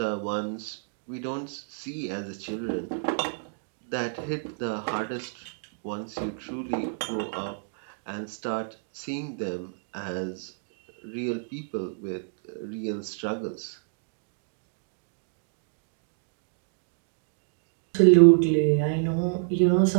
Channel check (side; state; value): left; silent; digital silence